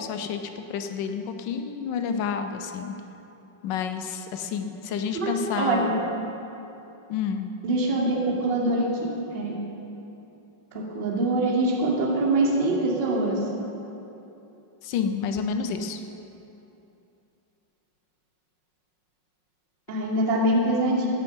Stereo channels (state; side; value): late; right; 5.5 ms